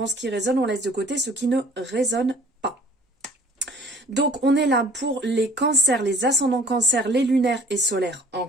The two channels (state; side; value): normal; both; correlation 0.50